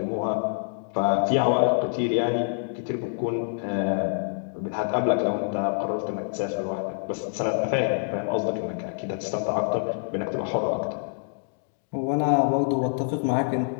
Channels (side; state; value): right; silent; digital silence